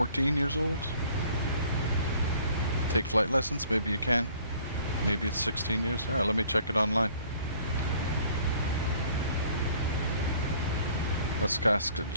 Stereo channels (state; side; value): inverted; both; correlation -0.56